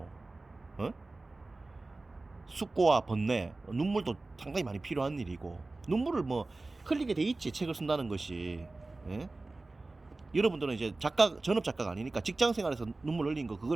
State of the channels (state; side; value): quieter; left; 3.2 dB